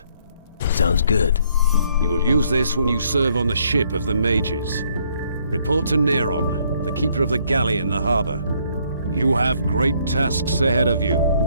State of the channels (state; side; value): inverted; both; correlation -0.67